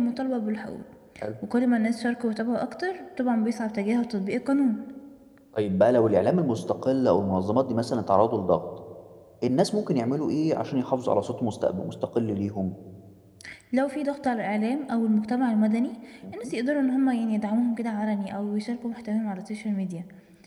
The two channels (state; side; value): identical; both; correlation 1.00